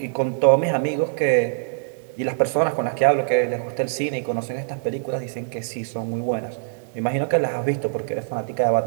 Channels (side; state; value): left; silent; digital silence